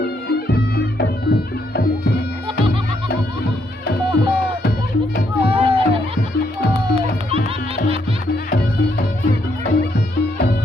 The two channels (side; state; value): both; normal; correlation 0.74